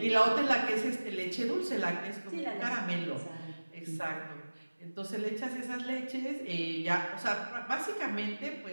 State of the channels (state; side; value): inverted; both; correlation -1.00